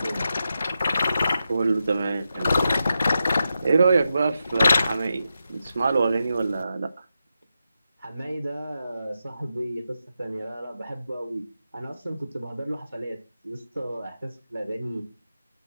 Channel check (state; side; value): inverted; both; correlation -0.88